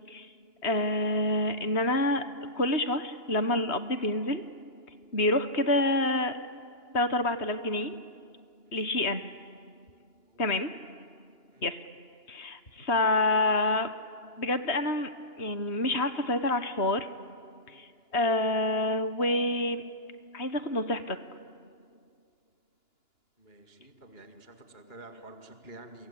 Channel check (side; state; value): right; late; 2.9 ms